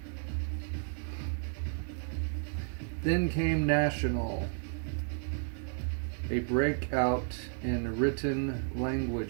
Then came national, a breakout in written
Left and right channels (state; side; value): silent; left; 56 dB below the other